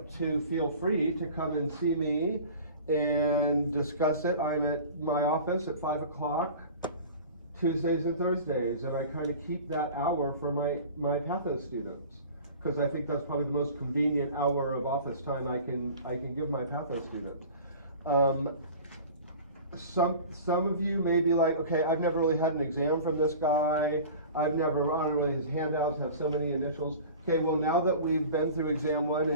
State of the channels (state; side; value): inverted; both; correlation -0.40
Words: to feel free to come and see me and discuss it. I'm at my office at 5 o'clock Tuesdays and Thursdays, and I kind of keep that hour for my Patho students, because I think that's probably the most convenient hour of office time I can give my Patho students. Some of you may be like, okay, I've never really had an exam from this guy. I don't really, his handouts have so many initials. Okay, well, now that we've been through exam 1